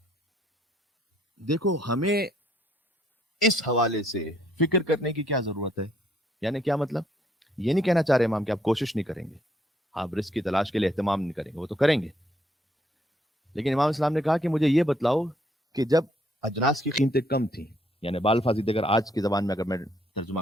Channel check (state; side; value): normal; both; correlation 0.69